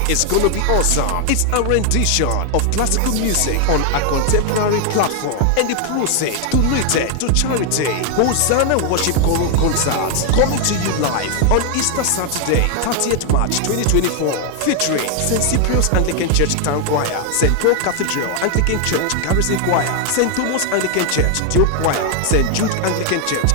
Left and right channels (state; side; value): different; both; correlation 0.00